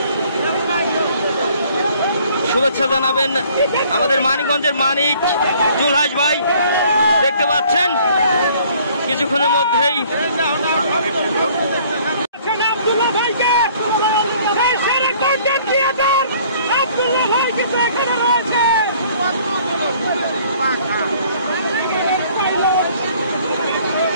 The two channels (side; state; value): both; inverted; correlation -0.58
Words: শুভেচ্ছা জানাবেন আমাদের মানিকগঞ্জের মানিক জুলহাস ভাই। দেখতে পাচ্ছেন কিছুক্ষণের মধ্যেই